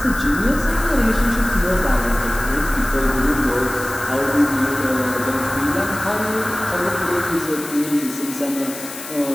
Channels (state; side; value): noise; left; hiss, 12 dB below the sound